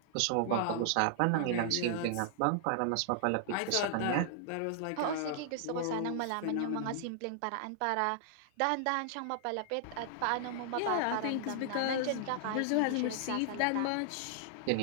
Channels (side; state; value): both; different; correlation -0.01